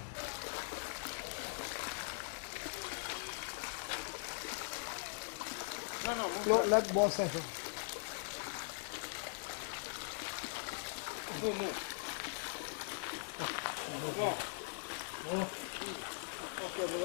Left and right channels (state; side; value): silent; right; digital silence